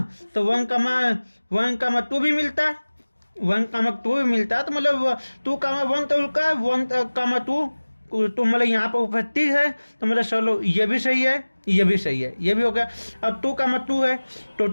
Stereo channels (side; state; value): both; inverted; correlation -1.00